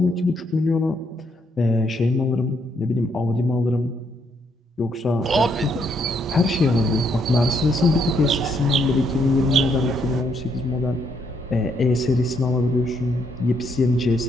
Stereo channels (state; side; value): normal; both; correlation 0.73